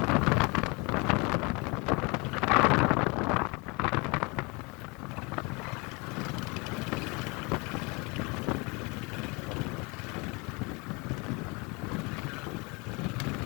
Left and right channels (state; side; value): quieter; right; 28.4 dB